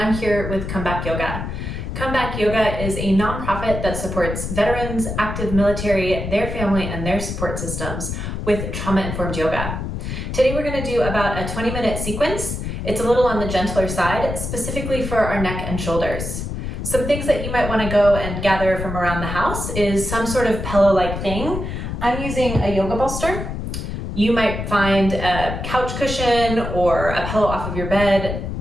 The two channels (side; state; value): left; noise; rumble, 5 dB below the sound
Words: here with Comeback Yoga. Comeback Yoga is a nonprofit that supports veterans, active military, their family, and their support systems with trauma-informed yoga. Today we're going to do about a 20-minute sequence. It's a little on the gentler side, specifically for our neck and shoulders. Some things that you might want to go and gather from around the house is some sort of pillow-like thing. I'm using a yoga bolster. You might find a couch cushion or a pillow off of your bed,